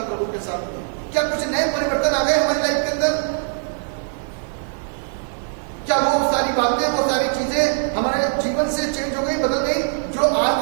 प्रभु के साथ में। क्या कुछ नए परिवर्तन आ गए हमारी लाइफ के अंदर? क्या वो सारी बातें, वो सारी चीजें हमारे जीवन से चेंज हो गई, बदल गई, जो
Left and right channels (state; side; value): silent; left; 61 dB below the other